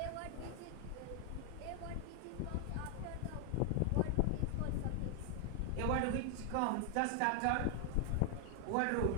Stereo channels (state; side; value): different; both; correlation 0.00